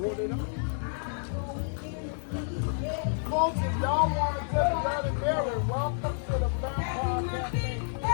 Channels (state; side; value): silent; right; digital silence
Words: it up. Folks, if y'all want to get a Bloody Mary, welcome to the Vampire Cafe.